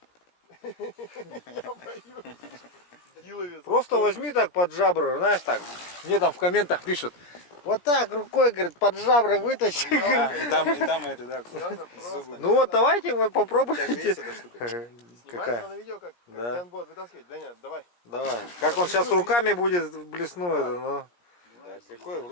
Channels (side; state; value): right; late; 17 ms